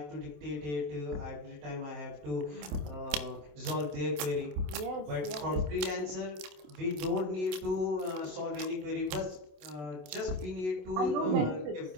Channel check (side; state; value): left; late; 27 ms